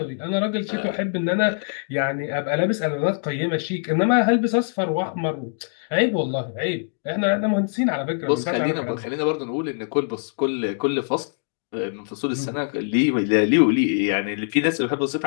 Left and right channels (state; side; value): silent; right; digital silence